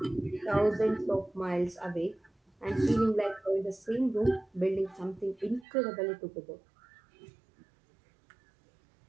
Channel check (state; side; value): drops out; left; at 5.7 s